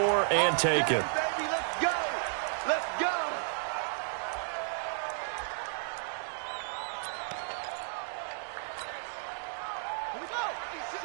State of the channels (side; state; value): left; silent; digital silence